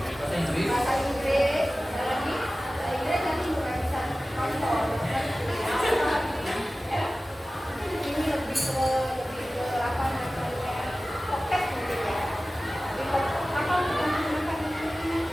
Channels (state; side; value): normal; both; correlation 0.96